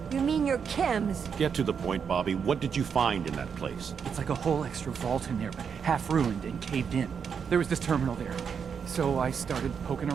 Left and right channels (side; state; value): left; quieter; 6.8 dB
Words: You mean your chems? Get to the point, Bobby. What did you find in that place? It's like a whole extra vault in there, but half ruined and caved in. There was this terminal there, so I started poking